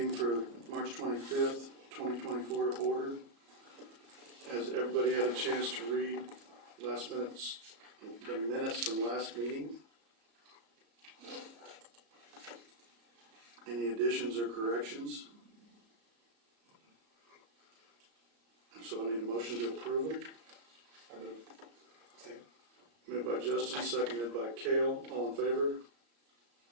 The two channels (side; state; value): left; late; 35 ms